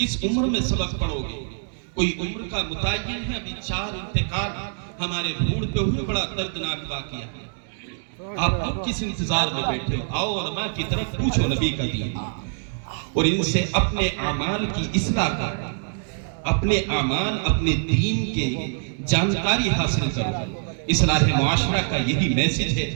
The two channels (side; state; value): left; silent; digital silence